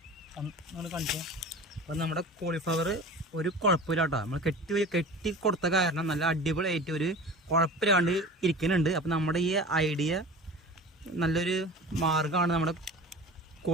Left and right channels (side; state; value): both; normal; correlation 0.37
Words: കാണിച്ചു. അപ്പം നമ്മുടെ കോളിഫ്ലവർ ഒരു കുഴപ്പമില്ല കേട്ടോ. നമ്മൾ കെട്ടി കൊടുത്ത കാരണം നല്ല അടിപൊളിയായിട്ട് ഒരു കുഴപ്പമില്ലാണ്ട് ഇരിക്കുന്നുണ്ട്. അപ്പം നമ്മുടെ ഈ ഐഡിയ നല്ലൊരു മാർഗ്ഗമാണ് നമ്മുടെ